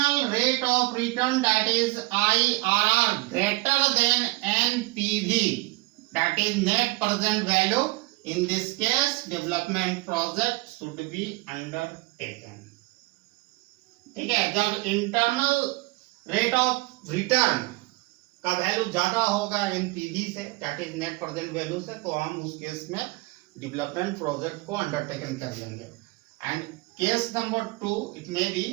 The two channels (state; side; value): quieter; left; 23.5 dB